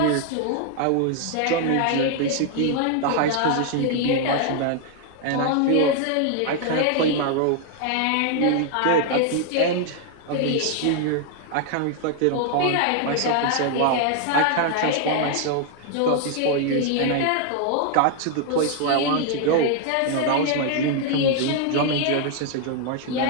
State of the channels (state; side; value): different; both; correlation 0.00